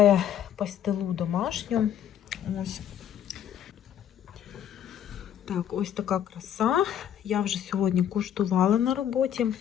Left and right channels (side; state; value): right; quieter; 9.9 dB